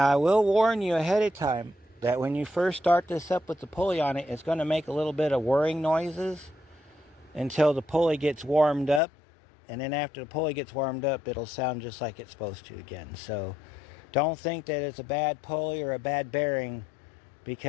I will warn you ahead of time, that when you first start this up with the pulley on it, it's going to make a little bit of whirring noises until the pulley gets warmed up. And then after the pulley gets warmed up, it'll sound just like it's supposed to again. So don't think that it's a bad pulley or a bad bearing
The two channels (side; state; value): right; drops out; at 9.0 s